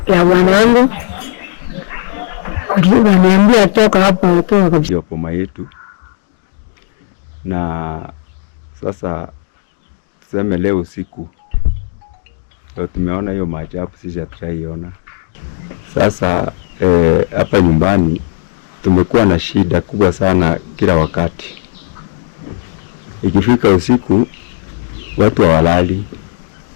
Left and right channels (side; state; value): right; silent; digital silence